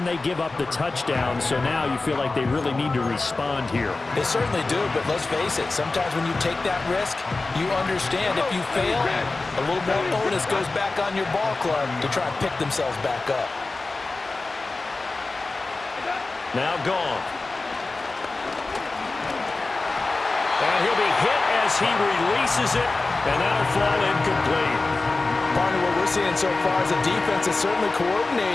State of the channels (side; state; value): right; quieter; 3.5 dB